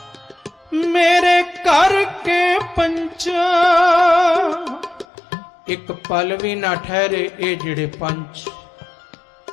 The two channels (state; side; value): drops out; right; at 5.1 s